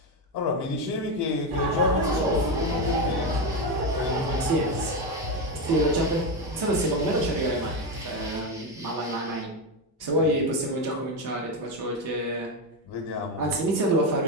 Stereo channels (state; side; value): normal; both; correlation 0.12